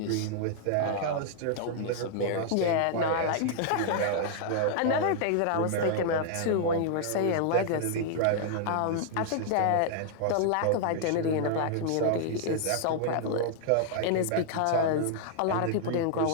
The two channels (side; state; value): both; different; correlation -0.01